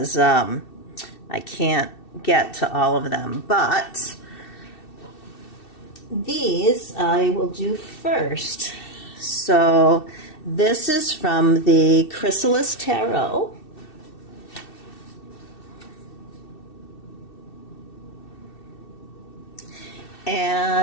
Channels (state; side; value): late; right; 2.7 ms